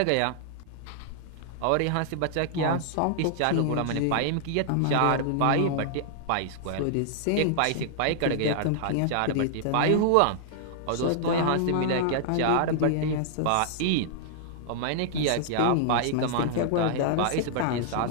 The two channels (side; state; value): both; different; correlation -0.01